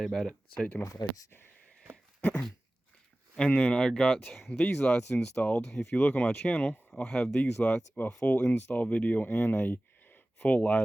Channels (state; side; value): normal; both; correlation 0.97